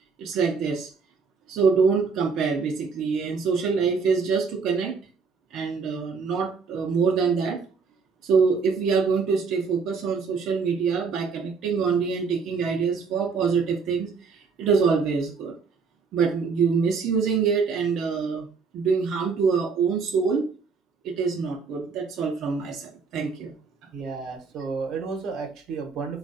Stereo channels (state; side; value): quieter; left; 5.2 dB